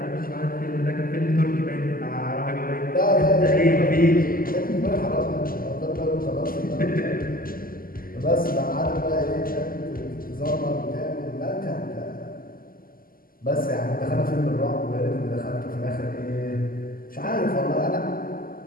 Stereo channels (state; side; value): late; right; 0.42 ms